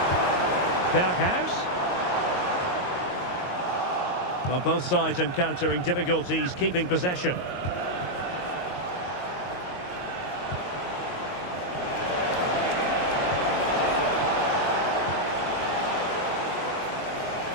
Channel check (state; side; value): late; right; 22 ms